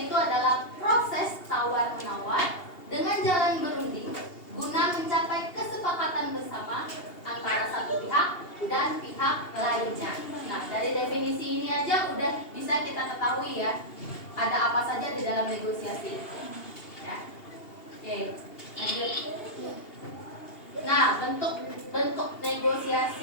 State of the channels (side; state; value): right; late; 2.8 ms